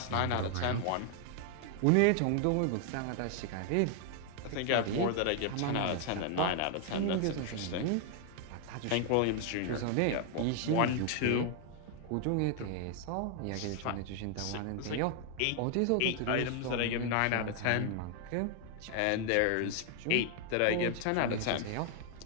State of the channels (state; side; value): different; both; correlation 0.00